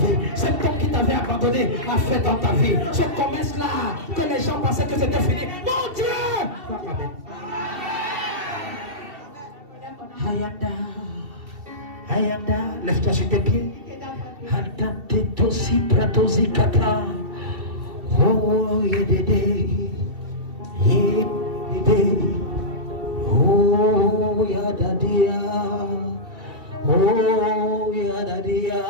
Cet homme qui t'avait abandonné a fait dans ta vie. Ce commerce-là que les gens pensaient que c'était fini. Mon Dieu! Amen. Hayanda, Hayanda, lève-toi sur tes pieds. Hadate tosi pratosi kata. Oh yedede, yedede. Oh yadadia, oh yadadia.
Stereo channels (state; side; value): late; left; 2.7 ms